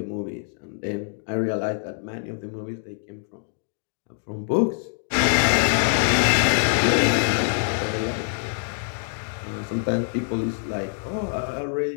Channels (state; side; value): silent; right; digital silence